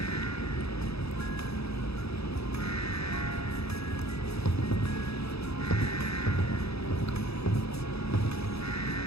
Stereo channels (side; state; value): right; late; 0.78 ms